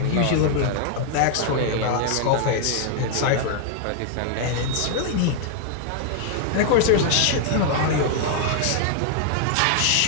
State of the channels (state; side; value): different; both; correlation 0.00